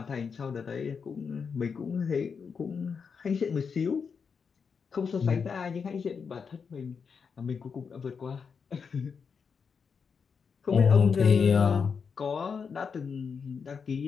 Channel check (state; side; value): quieter; right; 5.9 dB